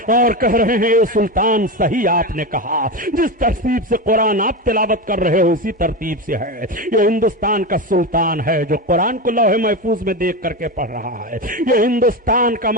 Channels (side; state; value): both; normal; correlation 0.18